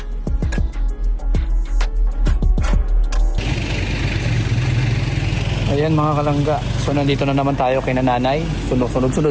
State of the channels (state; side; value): identical; both; correlation 1.00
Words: Ayan mga kalangga, so nandito na naman tayo kay nanay.